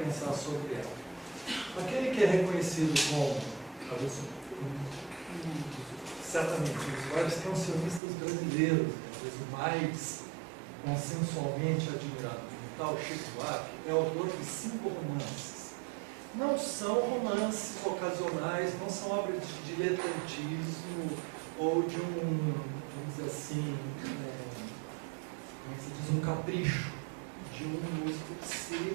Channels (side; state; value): left; drops out; at 8.0 s